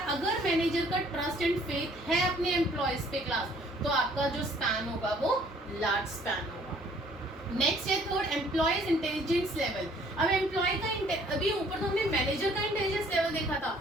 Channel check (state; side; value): normal; both; correlation 0.59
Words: अगर मैनेजर का ट्रस्ट एंड फेथ है अपने एम्प्लॉयज पे क्लास, तो आपका जो स्पैन होगा वो लार्ज स्पैन होगा। नेक्स्ट है थर्ड, एम्प्लॉयज इंटेलिजेंस लेवल। अब एम्प्लॉय का, अभी ऊपर तो हमने मैनेजर का इंटेलिजेंस लेवल देखा था,